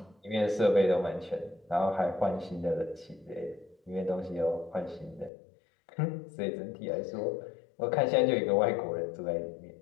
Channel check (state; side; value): drops out; right; at 5.3 s